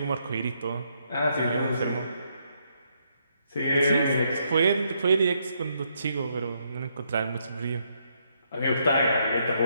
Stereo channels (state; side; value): inverted; both; correlation -0.75